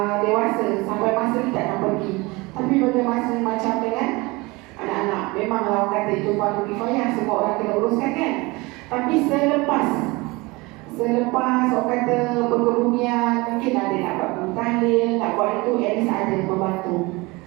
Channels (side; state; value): left; quieter; 23.8 dB